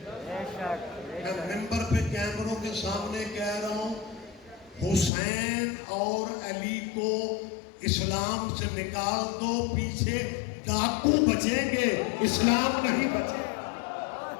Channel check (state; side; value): drops out; right; at 5.1 s